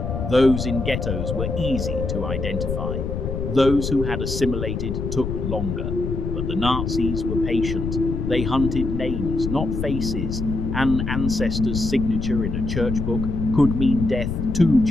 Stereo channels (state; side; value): noise; left; rumble, 3 dB below the sound